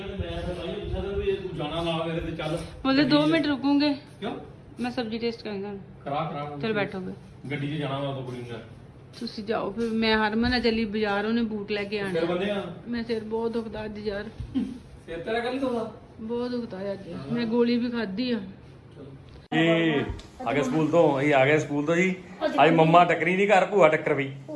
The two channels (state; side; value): identical; both; correlation 1.00